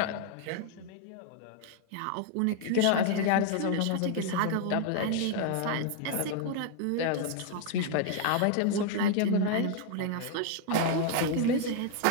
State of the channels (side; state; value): both; different; correlation 0.00